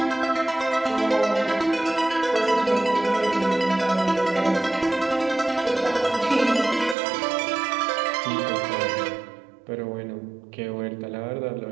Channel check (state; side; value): drops out; left; at 7.0 s